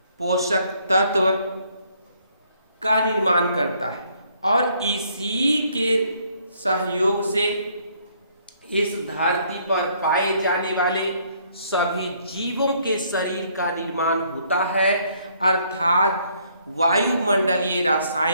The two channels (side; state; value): both; inverted; correlation -0.66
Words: पोषक तत्व का निर्माण करता है और इसी के सहयोग से इस धरती पर पाए जाने वाले सभी जीवों के शरीर का निर्माण होता है। अर्थात वायुमंडलीय